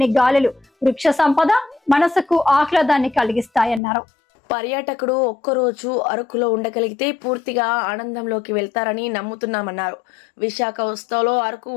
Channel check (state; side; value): drops out; right; at 3.8 s